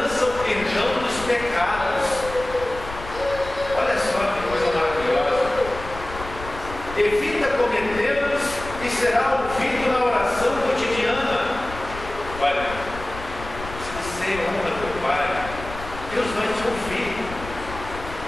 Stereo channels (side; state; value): left; noise; rumble, 12 dB below the sound